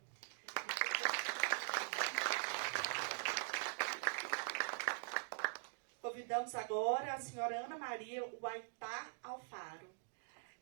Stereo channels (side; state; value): left; silent; digital silence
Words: Convidamos agora a senhora Ana Maria Huaytá Alfaro.